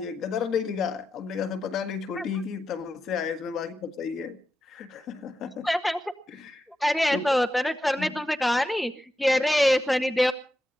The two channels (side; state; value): both; normal; correlation 0.88